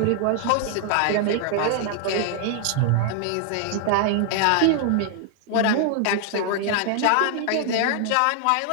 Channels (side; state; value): both; different; correlation 0.00